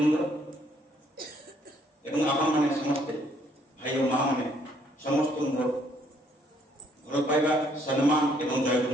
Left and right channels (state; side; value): normal; both; correlation 0.66